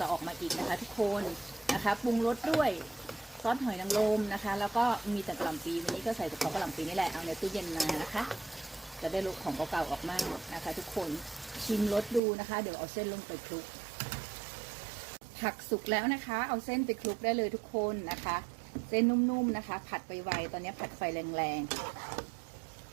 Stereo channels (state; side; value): drops out; left; at 12.2 s